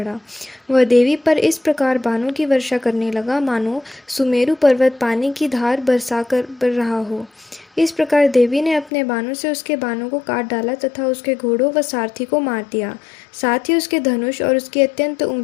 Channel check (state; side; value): drops out; right; at 8.9 s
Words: वह देवी पर इस प्रकार बाणों की वर्षा करने लगा मानो सुमेरु पर्वत पानी की धार बरसा कर रहा हो। इस प्रकार देवी ने अपने बाणों से उसके बाणों को काट डाला तथा उसके घोड़ों व सारथी को मार दिया। साथ ही उसके धनुष और उसकी अत्यंत